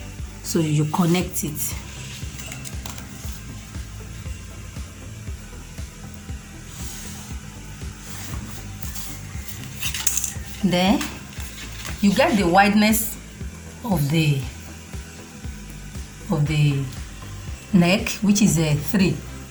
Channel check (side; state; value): both; identical; correlation 1.00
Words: So you connect it. Then you get the wideness of the neck, which is 3.